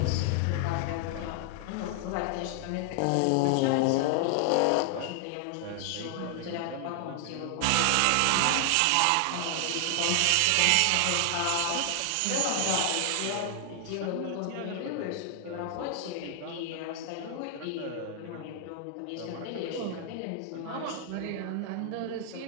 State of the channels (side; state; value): both; different; correlation 0.00